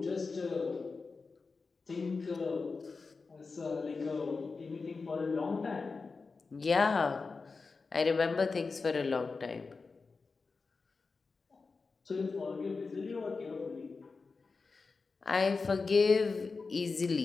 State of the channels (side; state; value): right; quieter; 4.4 dB